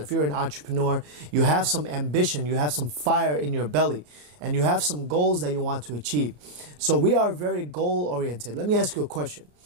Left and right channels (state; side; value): late; left; 34 ms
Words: you're an entrepreneur, you have some ambition, you have some fire in your belly, and you have some goals that you want to achieve. So we are very goal oriented. Let me ask you a question.